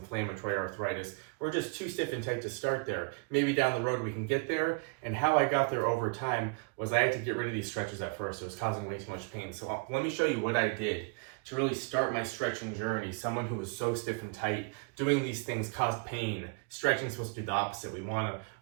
arthritis, or just too stiff and tight to start there. Maybe down the road we can get there. And how I got there over time was I had to get rid of these stretches at first. It was causing way too much pain. So let me show you what I did to really start my stretching journey. Someone who was so stiff and tight, doing these things caused pain. Stretching is supposed to do the opposite. We want to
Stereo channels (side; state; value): left; quieter; 33.9 dB